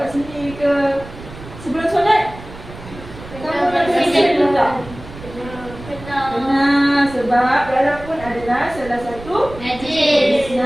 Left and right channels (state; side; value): noise; right; rumble, 15 dB below the sound